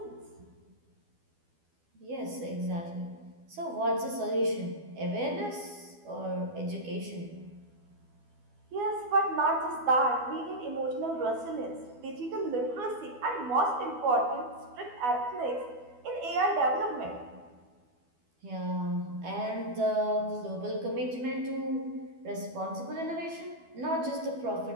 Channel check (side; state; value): left; late; 12 ms